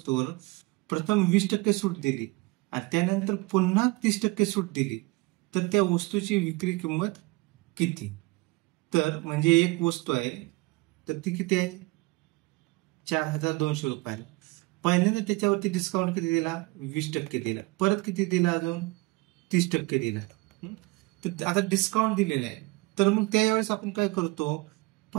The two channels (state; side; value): quieter; left; 23.3 dB